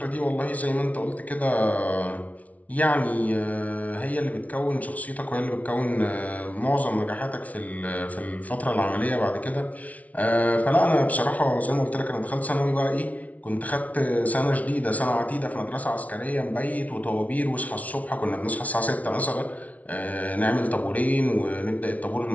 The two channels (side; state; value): right; late; 0.069 ms